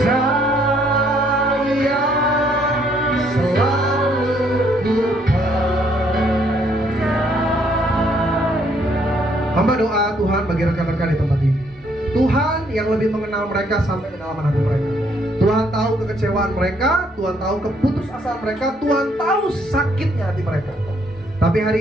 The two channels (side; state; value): both; normal; correlation 0.68